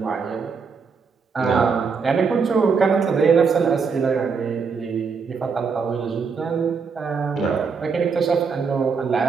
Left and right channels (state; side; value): quieter; left; 5.5 dB